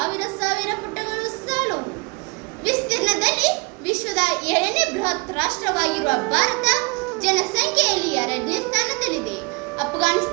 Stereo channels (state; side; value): quieter; left; 29.5 dB